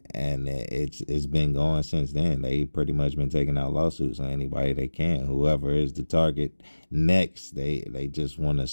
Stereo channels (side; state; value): both; inverted; correlation -1.00